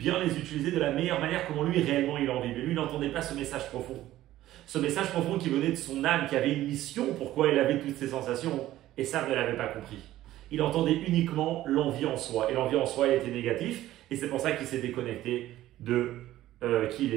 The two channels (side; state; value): left; quieter; 14.5 dB